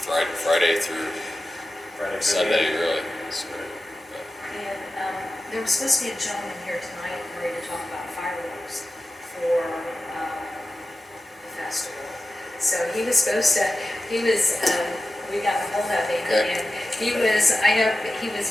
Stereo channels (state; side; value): normal; both; correlation 0.94